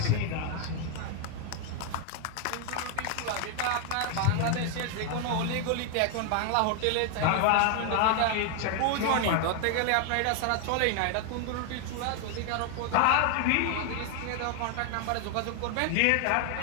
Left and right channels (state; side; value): different; both; correlation 0.00